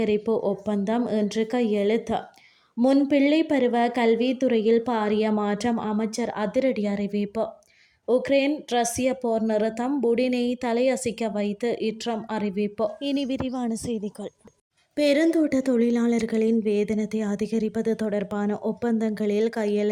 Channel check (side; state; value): both; identical; correlation 1.00